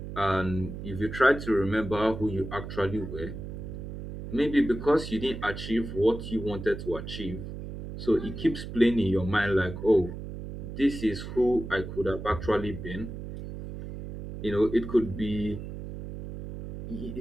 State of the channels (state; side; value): noise; right; hum, 9 dB below the sound